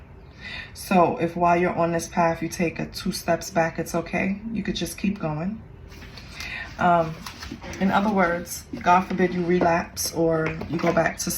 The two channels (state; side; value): identical; both; correlation 1.00